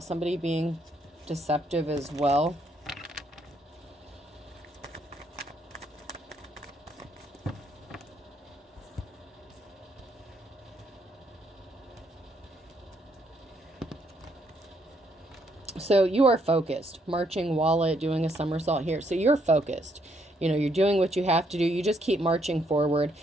somebody being deceptive as well. So you are focused, marching wallet, doing a somersault here. So you're focused. You know, you're doing what you have to do. You just keep marching forward.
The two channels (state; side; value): normal; both; correlation 0.72